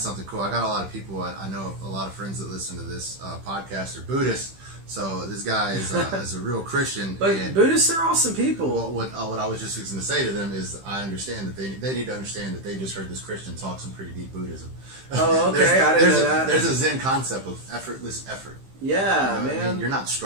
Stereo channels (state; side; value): late; left; 15 ms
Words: something cool. I got a lot of people, I know a lot of friends that listen to this podcast are Buddhists. So this guy is a real Christian. But and Buddhists are awesome people. What I was just going to say to them is I understand that they need to understand that they just heard this Christian talk some pretty deep Buddhism. Oh, okay. I didn't know that. There's a Zen concept of effortless effort. Yeah, you know man. I mean, you're not